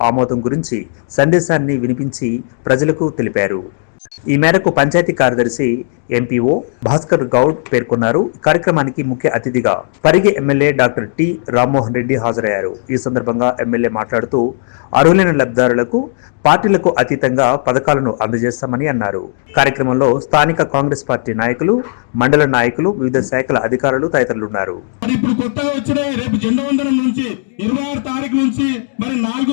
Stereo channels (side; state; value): right; silent; digital silence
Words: ఆమోదం గురించి సందేశాన్ని వినిపించి ప్రజలకు తెలిపారు. ఈ మేరకు పంచాయతీ కార్యదర్శి ఎంపీఓ భాస్కర్ గౌడ్ పేర్కొన్నారు. కార్యక్రమానికి ముఖ్య అతిథిగా Parigi MLA doctor T Rammohan Reddy హాజరయ్యారు. ఈ సందర్భంగా ఎమ్మెల్యే మాట్లాడుతూ అర్హులైన లబ్ధిదారులకు పార్టీలకు అతీతంగా పథకాలను అందజేస్తామని అన్నారు. కార్యక్రమంలో స్థానిక కాంగ్రెస్ పార్టీ నాయకులు, మండల నాయకులు, వివిధ శాఖల అధికారులు తదితరులు ఉన్నారు. ఇప్పుడు కొత్తగా వచ్చిన రేపు జెండా వందనం నుంచి 26 తారీఖు నుంచి మరి